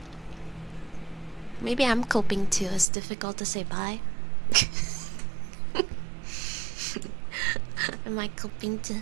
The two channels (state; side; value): drops out; left; at 2.9 s